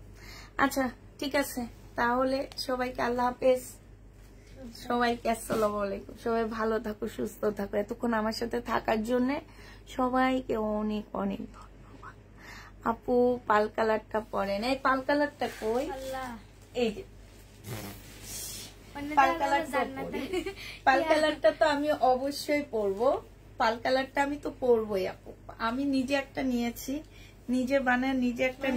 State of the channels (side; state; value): both; identical; correlation 1.00